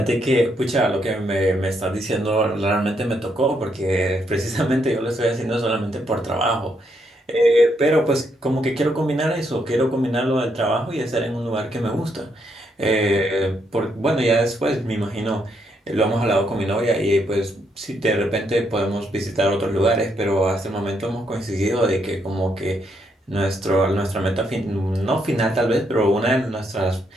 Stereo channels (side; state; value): both; normal; correlation 0.76